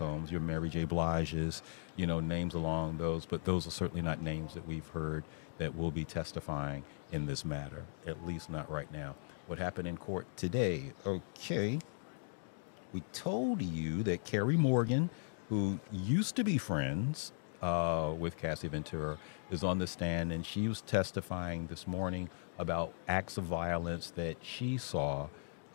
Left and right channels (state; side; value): silent; right; digital silence